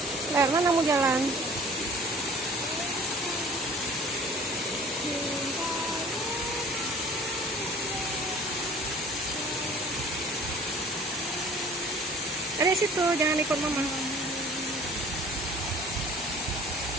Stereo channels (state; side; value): normal; both; correlation 0.48